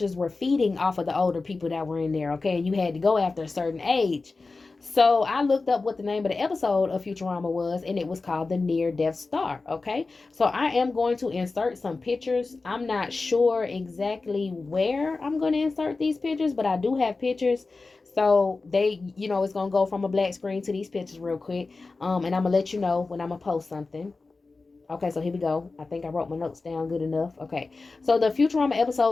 were feeding off of the older people that were in there. Okay, and you had to go after a certain age. So I looked up what the name of the episode of Futurama was, and it was called The Near Death Star. Okay, so I am going to insert some pictures. I'm not sure exactly where I'm going to insert these pictures, but I do have pictures. So they, you know, it's going to go from a black screen to these pictures real quick. And I'm going to let you know when I'm going to post something. Okay, so here we go. I think I wrote my notes down good enough. Okay, so the Futurama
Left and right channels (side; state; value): right; quieter; 3.8 dB